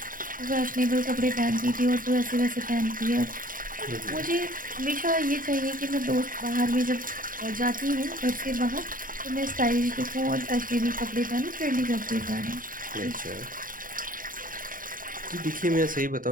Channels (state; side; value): late; left; 0.40 ms